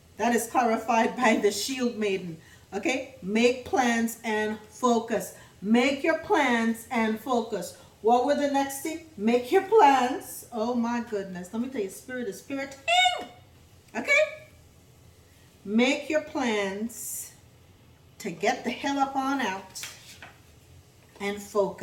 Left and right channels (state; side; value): identical; both; correlation 1.00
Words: That is clarified by the Shield Maiden. Okay? Make plans and focus. Make your plans and focus. What were the next thing? Make your plans. Oh my goodness. Let me tell you, spirit is spiriting. Okay? Make your plans to get the hell up on out and